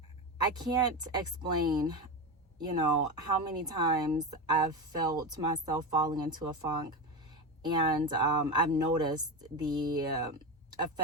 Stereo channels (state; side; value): normal; both; correlation 0.19